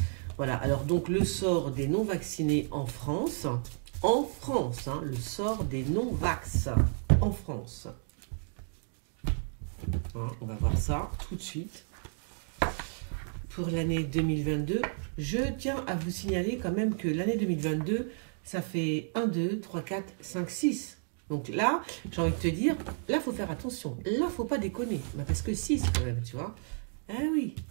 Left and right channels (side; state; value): left; silent; 57 dB below the other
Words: Voilà, alors donc le sort des non-vaccinés en France, hein, le sort des non-vax en France. Hein, on va voir ça tout de suite. Pour l'année 2022, je tiens à vous signaler quand même que l'année 2022, ça fait 1, 2, 3, 4, 5, 6. Donc là, j'ai envie de te dire, là, il faut faire attention. Là, il ne faut pas déconner. Bah, parce que 6 quand même, tu vois. Ah oui,